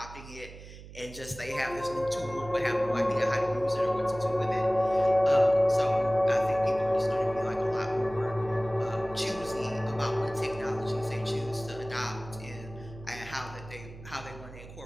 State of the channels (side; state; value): right; noise; hum, 16 dB below the sound